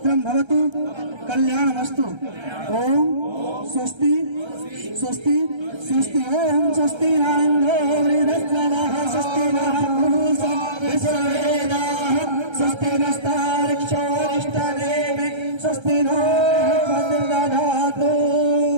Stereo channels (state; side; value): late; left; 1.3 ms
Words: भवतु कल्याणमस्तु ओम स्वस्ति स्वस्ति स्वस्ति ओम स्वस्ति न इन्द्रो वृद्धश्रवः स्वस्ति नः पूषा विश्ववेदाः स्वस्ति नस्तार्क्ष्योरिष्टनेमि स्वस्ति नो भद्रदधातु